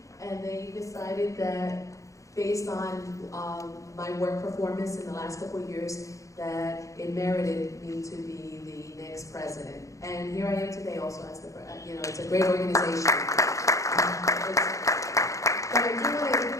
and they decided that based on my work performance in the last couple of years, that it merited me to be the next president. And here I am today also as the, you know, it's a great organization. But I do want to, you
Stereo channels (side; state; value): right; late; 0.15 ms